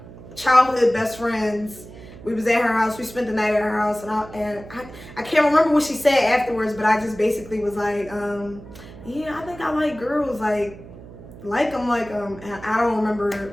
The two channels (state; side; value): noise; right; hum, 17 dB below the sound